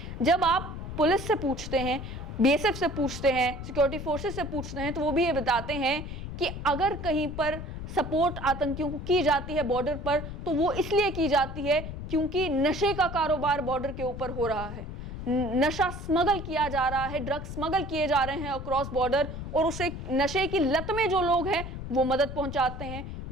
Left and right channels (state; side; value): noise; left; rumble, 8 dB below the sound